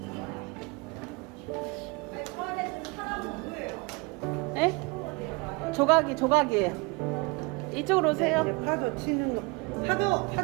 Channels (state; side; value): quieter; left; 28.1 dB